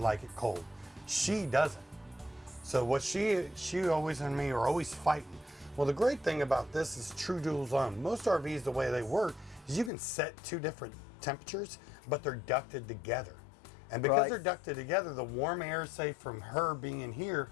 it cold. She doesn't. So what she always and me are always fighting. Well, the great thing about this is true dual zone. Most RVs, the way they work is you can set 2 different temperatures, but they're ducted together. And because they're ducted together, the warm air, say from her being in here,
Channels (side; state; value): right; drops out; at 9.9 s